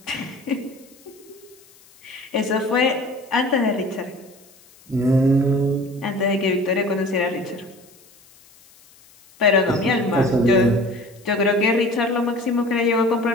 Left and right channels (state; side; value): noise; left; hiss, 27 dB below the sound